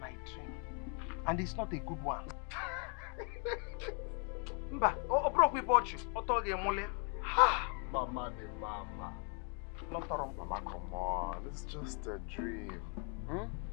dream. And it's not a good one. Mba, broke with you. Mama the mama. Mama, come on. It's just a dream.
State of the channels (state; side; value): quieter; right; 38.1 dB